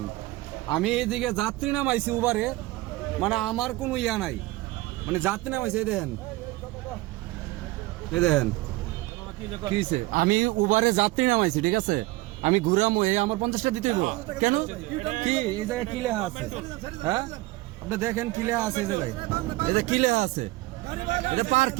আমি এইদিকে যাত্রী নামাইছি উবারে, মানে আমার কোনো ইয়া নাই, মানে যাত্রী নামাইছি। এই দেখেন কিছে আমি উবারে যাত্রী নামাইছি, ঠিক আছে, আমি ঘুরামো, এই আমার 50টা দিতে হইব কেন? কি এই জায়গায় কি লেখা আছে? হ্যাঁ আপনি দেখেন কি লেখা আছে এই জায়গায়, এই যে কি লেখা আছে, এটা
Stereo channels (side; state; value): left; quieter; 19.7 dB